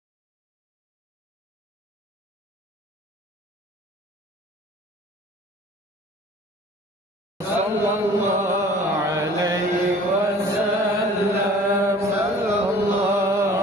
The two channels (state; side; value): normal; both; correlation 0.48